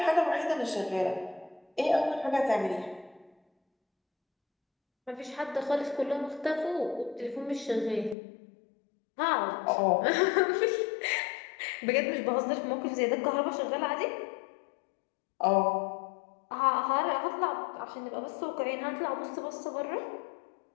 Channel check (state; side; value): drops out; right; at 8.2 s